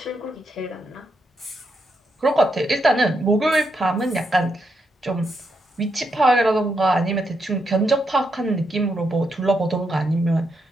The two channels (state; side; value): normal; both; correlation 0.81